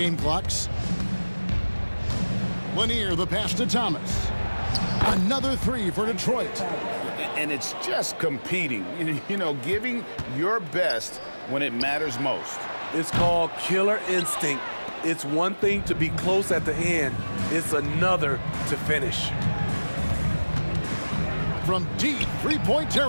clocks. Lanier, the pass to Thomas. Another three for Detroit. And it's just competing, you know, giving your best when it matters most. It's called killer instinct. It's one thing to be close at the end. It's another to finish. From deep three-point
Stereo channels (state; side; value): inverted; both; correlation -1.00